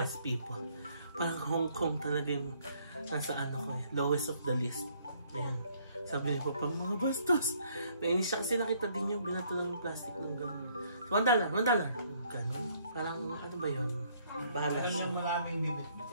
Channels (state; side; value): inverted; both; correlation -0.66